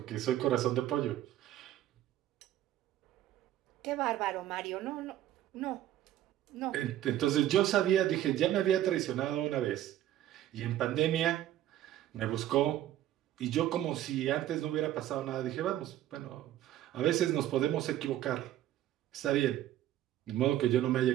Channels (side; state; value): left; quieter; 12.8 dB